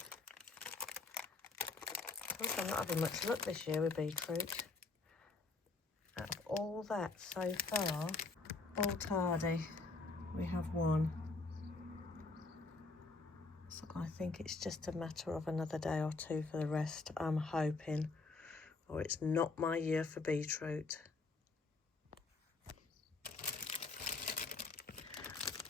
I'm not having much luck this year with beetroot. Out of all that so far, all tardy, we have one. So I think it's just a matter of another day or two for the rest, I'm hoping. Or it's not my year for beetroot.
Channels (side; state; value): right; quieter; 3.8 dB